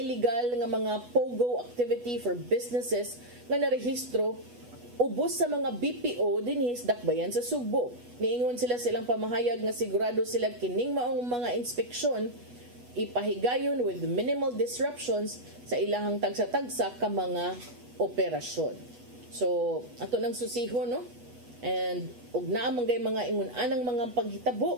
nga mga pogo activity for businesses nga narehistro ubos sa mga BPO dinhi sa dakbayan sa Sugbo. Niingon sila silang pamahayag nga sigurado sila kining maong mga inspeksyon ipahigayon with minimal disruptions sa ilahang tagsa-tagsa ka mga operasyon. So, ato nang susihon, no? And ug naa man gay mga ingon anang mga paghitabo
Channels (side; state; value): left; late; 8.3 ms